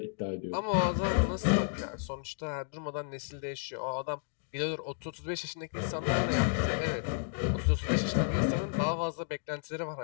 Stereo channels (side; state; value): right; silent; digital silence